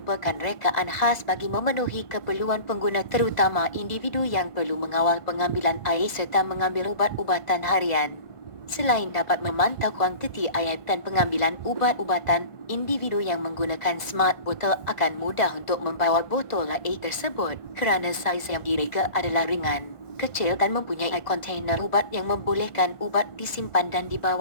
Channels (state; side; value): late; right; 1.5 ms